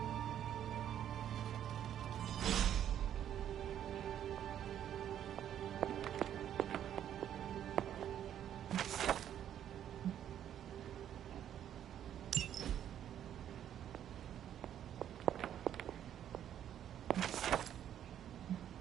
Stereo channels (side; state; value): left; quieter; 10.3 dB